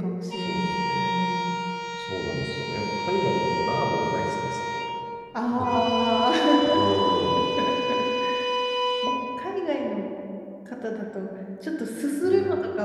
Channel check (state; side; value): identical; both; correlation 1.00